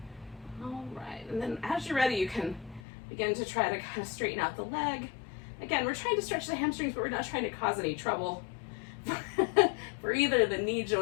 All right, and then as you're ready, you can begin to try to kind of straighten out the leg. Again, we're trying to stretch the hamstrings, but we're not trying to cause any trouble for either the knee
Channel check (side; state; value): right; drops out; at 2.8 s